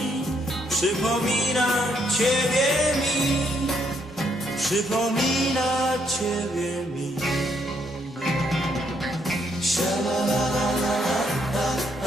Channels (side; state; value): both; normal; correlation 0.73